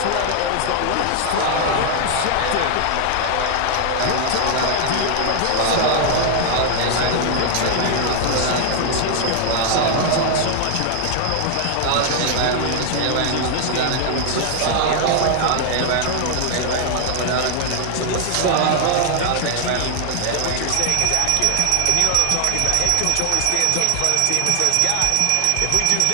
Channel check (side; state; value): both; different; correlation 0.00